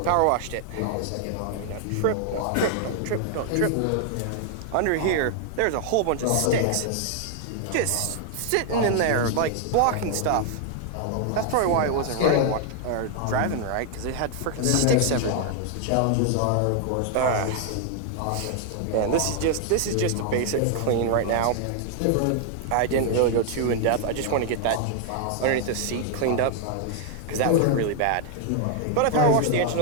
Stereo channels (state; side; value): different; both; correlation 0.00